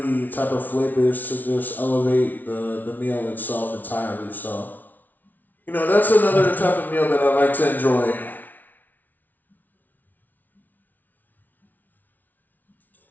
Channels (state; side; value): late; right; 0.081 ms